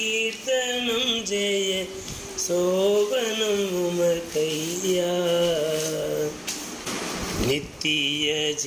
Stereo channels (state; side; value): identical; both; correlation 1.00